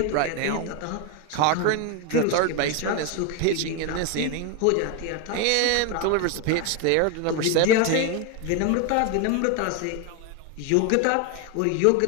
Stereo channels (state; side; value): different; both; correlation 0.01